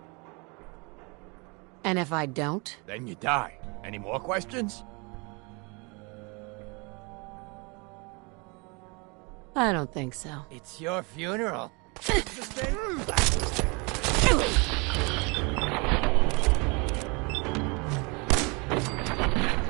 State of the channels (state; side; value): quieter; left; 30.0 dB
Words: And if I don't? Then you die. Any more questions? I don't think so. It's your funeral.